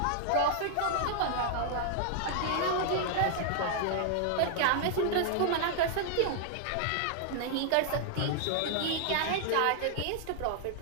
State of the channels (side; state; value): both; different; correlation -0.01